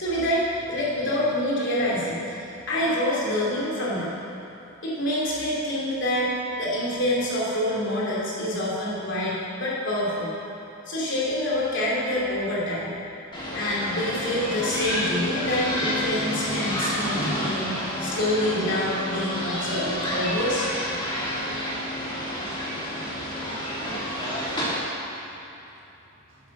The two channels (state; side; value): normal; both; correlation 0.10